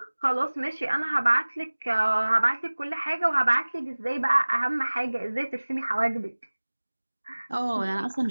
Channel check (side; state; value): both; inverted; correlation -1.00